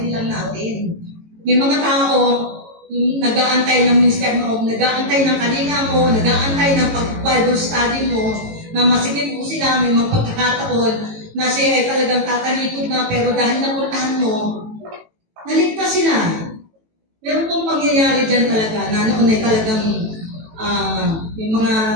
lang natin. May mga tao, nag-aantay ng minister mo, nag-aantay ng kalinga mo, nag-aantay ng pag-Bible study mo, na masigit po sila, may magpagkakataon na siya ay talagang tatalikod na, pero dahil napuntahan mo, naligtas sila. Meron pong pangyayari dyan talaga, na noon ay talagang may mga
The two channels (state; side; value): late; left; 18 ms